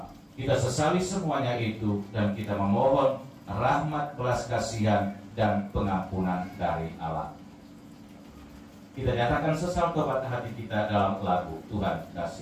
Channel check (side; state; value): both; identical; correlation 1.00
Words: kita sesali semuanya itu, dan kita memohon rahmat, belas kasihan, dan pengampunan dari Allah. Kita nyatakan sesal kepada hati kita dalam lagu Tuhan